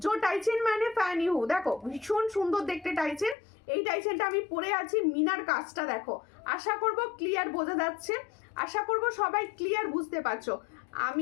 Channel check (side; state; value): right; drops out; at 3.4 s